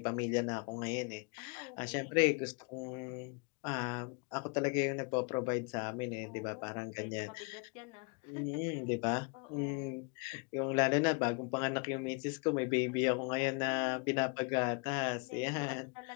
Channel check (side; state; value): right; quieter; 33.7 dB